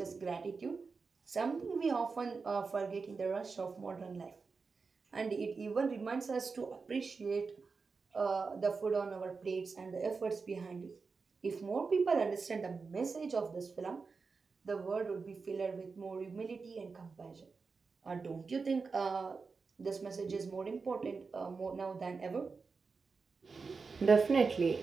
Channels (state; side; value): quieter; left; 4.7 dB